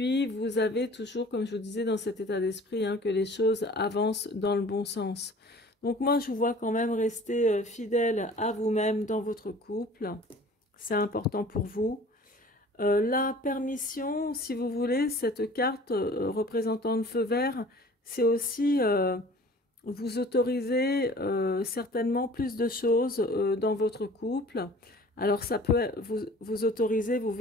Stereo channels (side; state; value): both; normal; correlation 0.47